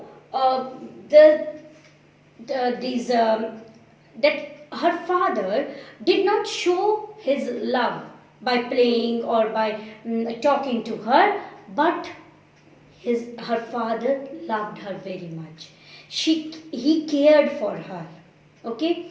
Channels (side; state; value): both; identical; correlation 1.00